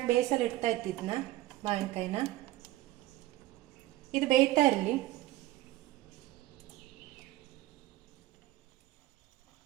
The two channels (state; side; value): quieter; left; 16.5 dB